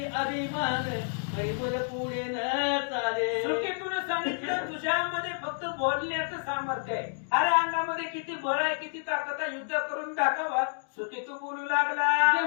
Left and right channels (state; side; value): silent; right; digital silence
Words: अभिमान परिबल पुढे न चाले. सुकेतून सांगितलं, तुझ्यामध्ये फक्त बोलण्याचं सामर्थ्य आहे. अरे अंगामध्ये किती बळ आहे, किती ताकद आहे, युद्ध करून दाखवा. सुकेतू बोलू लागला,